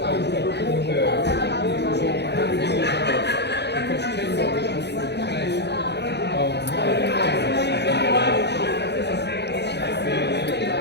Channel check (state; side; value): late; right; 0.49 ms